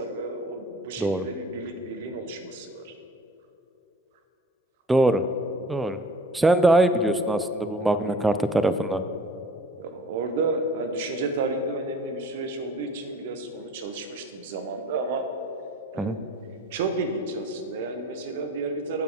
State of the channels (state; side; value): normal; both; correlation 0.48